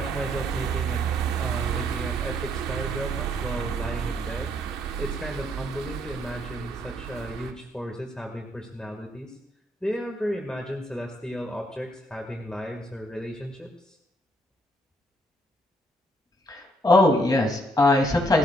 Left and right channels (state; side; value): normal; both; correlation 0.70